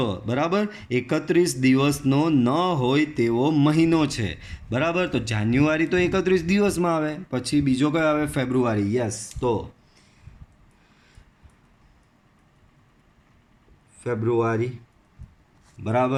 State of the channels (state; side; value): identical; both; correlation 1.00